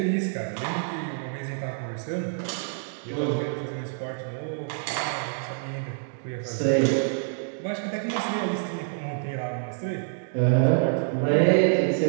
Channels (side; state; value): left; silent; digital silence